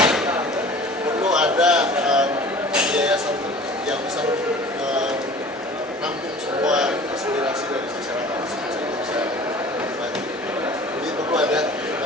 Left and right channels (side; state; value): both; normal; correlation 0.44